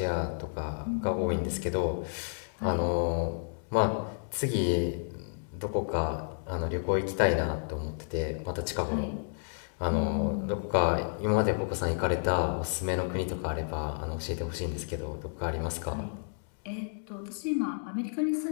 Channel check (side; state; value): right; silent; digital silence